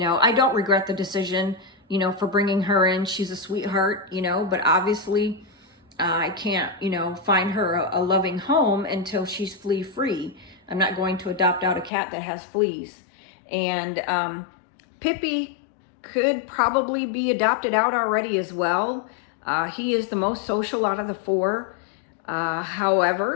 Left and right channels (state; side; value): drops out; right; at 11.9 s